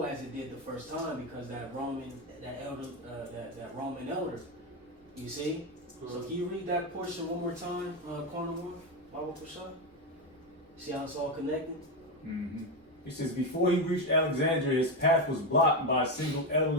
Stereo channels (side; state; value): both; normal; correlation 0.11